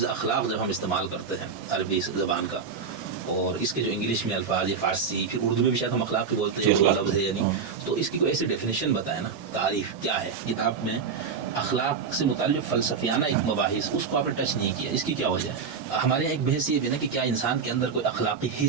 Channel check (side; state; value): left; quieter; 5.8 dB